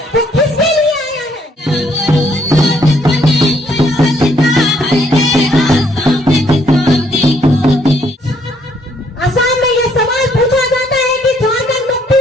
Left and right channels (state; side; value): normal; both; correlation 0.68